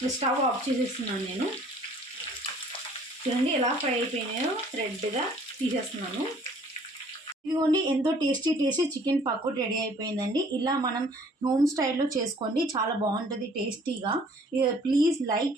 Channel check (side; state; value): both; normal; correlation 0.56